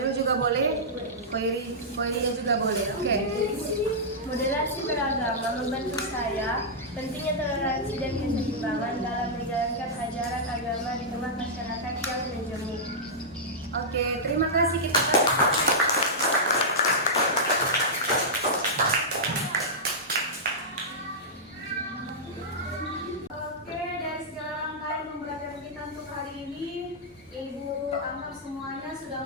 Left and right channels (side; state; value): both; normal; correlation -0.10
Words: juga boleh, Koirinya juga boleh. Oke. Moderasi beragama membantu saya pentingnya toleransi dan keseimbangan dalam menjalankan ajaran agama di tengah masyarakat yang menjemur. Oke, terima kasih kita. Oke, dari segala rangkaian pembelajaran kita untuk hari ini, Ibu anggap semuanya sudah